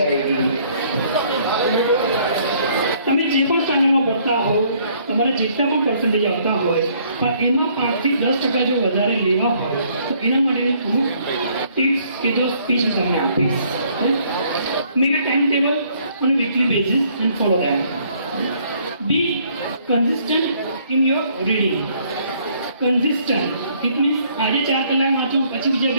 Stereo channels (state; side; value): inverted; both; correlation -0.64